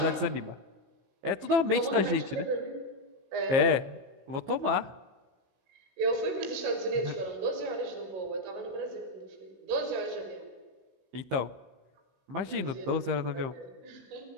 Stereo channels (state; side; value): late; left; 15 ms